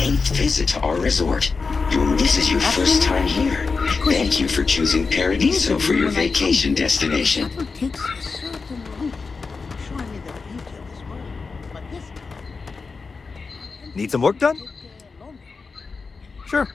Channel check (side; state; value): right; quieter; 4.6 dB